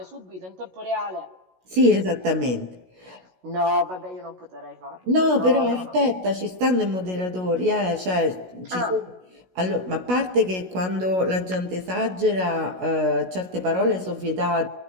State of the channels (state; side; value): late; left; 16 ms